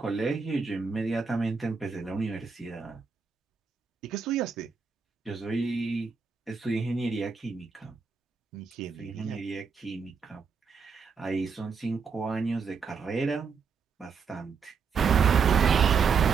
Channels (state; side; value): quieter; left; 5.7 dB